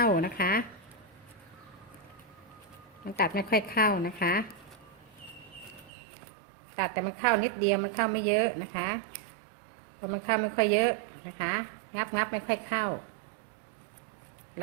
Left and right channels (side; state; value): left; drops out; at 5.9 s